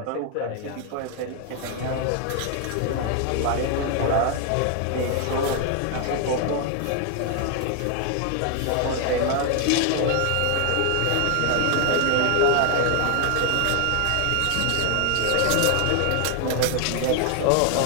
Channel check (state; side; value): different; both; correlation 0.00